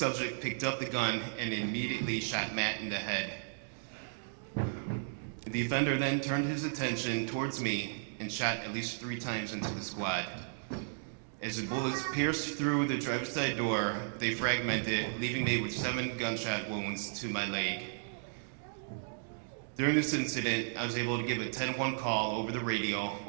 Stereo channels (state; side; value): silent; left; digital silence